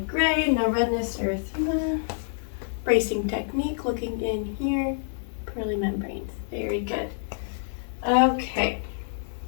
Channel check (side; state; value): right; silent; digital silence